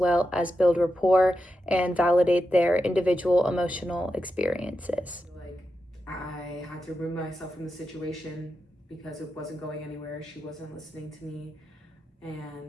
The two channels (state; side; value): normal; both; correlation 0.88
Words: as build rapport and validate their individual emotional experiences. Like I had to remove myself from the situation because it wasn't going anywhere. She wasn't listening to me